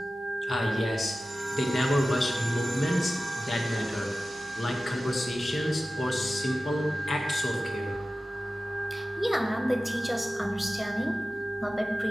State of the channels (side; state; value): both; normal; correlation 0.95